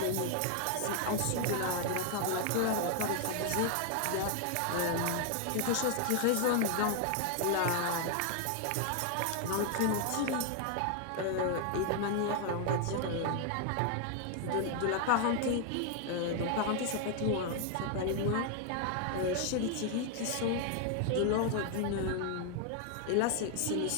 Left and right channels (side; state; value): both; different; correlation 0.00